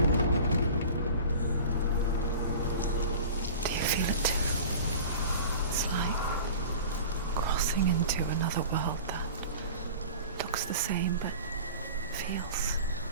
Do you feel it too? It's like crossing into another world that looks the same but feels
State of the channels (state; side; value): inverted; both; correlation -0.38